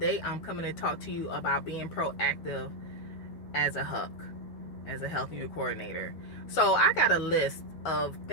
I'm coming to talk to you about being proactive as a HUC, as a health unit coordinator. So I got a list of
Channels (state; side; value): late; right; 12 ms